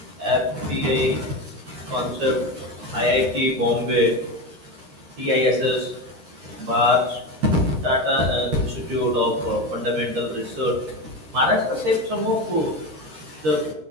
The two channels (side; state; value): left; late; 12 ms